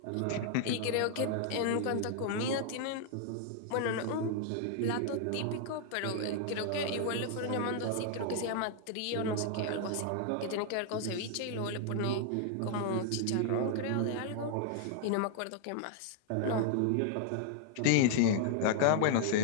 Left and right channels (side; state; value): both; different; correlation 0.00